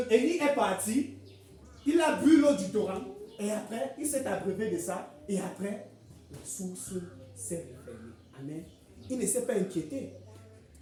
Élie est parti. Il a bu l'eau du torrent. Et après, il s'est abreuvé de ça. Et après, la source s'est refermée. Amen. Il ne s'est pas inquiété.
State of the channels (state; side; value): identical; both; correlation 1.00